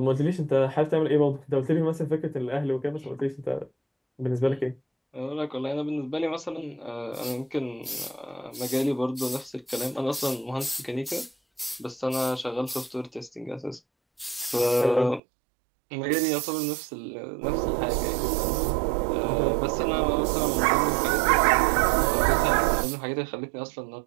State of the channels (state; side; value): drops out; left; at 15.2 s